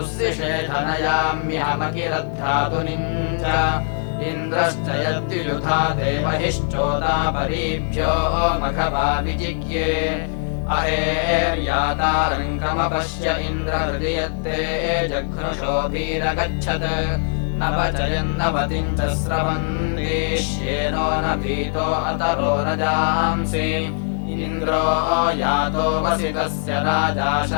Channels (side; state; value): right; silent; 60 dB below the other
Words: च इन्द्रश्च यद्युयुधा देवहिश्चोदापरीभ्यो मघवा विजिज्ञे अहेर्यातारङ्गमपश्य इन्द्रहृदि यत्ते जघ्नुषोभिरगच्छत् न वचयन्नवतिम् च स्रवन्तीष्येनो न भीतो अतरो न जांसि इन्द्रो यातो वसितस्य राजा